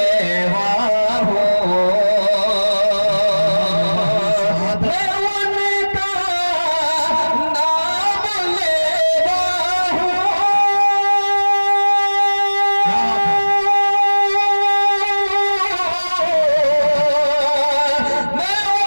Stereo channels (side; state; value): both; inverted; correlation -1.00